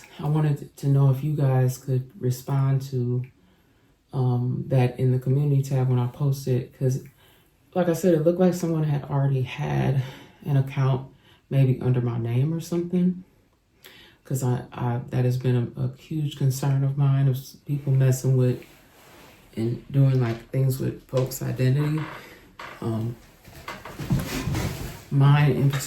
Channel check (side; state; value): both; identical; correlation 1.00